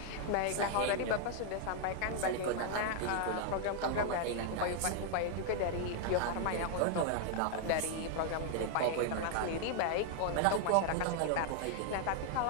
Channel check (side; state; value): both; different; correlation 0.00